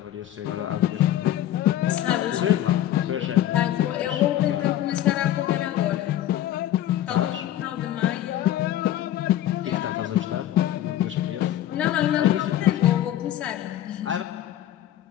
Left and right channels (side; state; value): right; quieter; 12.4 dB